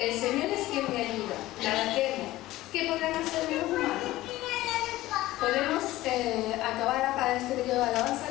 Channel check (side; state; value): right; quieter; 16.7 dB